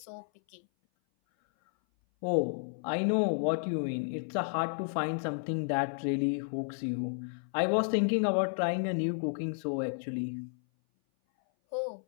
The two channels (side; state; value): right; silent; 56 dB below the other